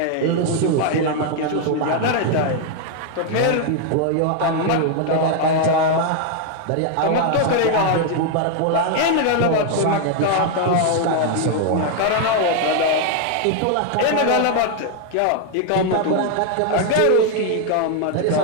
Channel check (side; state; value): both; different; correlation 0.00